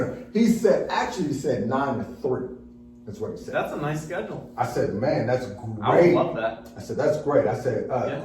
He said 9 to 3. That's what he said. That's a nice schedule. I said, man, that's great. I would love that. I said, that's great. I said,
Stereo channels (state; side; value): identical; both; correlation 1.00